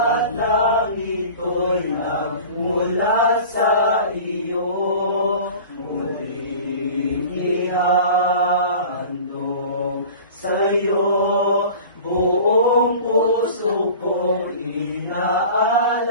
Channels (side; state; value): both; inverted; correlation -0.40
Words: ng ito'y nagmula sa iyo. Muling ihahandog sa'yo, buong puso ko